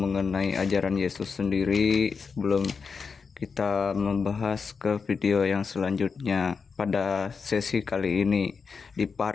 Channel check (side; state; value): right; quieter; 5.4 dB